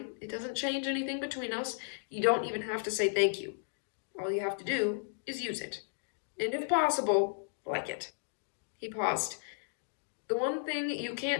it doesn't change anything between us. You don't even have to say thank you. All you have to do is use it. And if possible, like it. He paused. The one thing you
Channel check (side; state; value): right; silent; digital silence